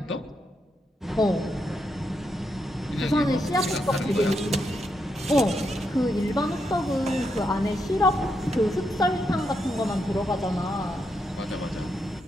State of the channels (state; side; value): normal; both; correlation 0.82